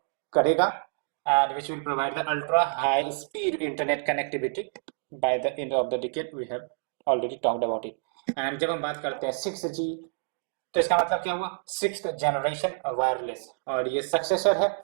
करेगा, and which will provide the ultra high speed internet connectivity by the end of the decade. We have already talked about it. And जब हम बात करते हैं 6G, तो इसका मतलब क्या हुआ? 6th जनरेशन वायरलेस, और ये सक्सेसर है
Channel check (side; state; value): left; silent; digital silence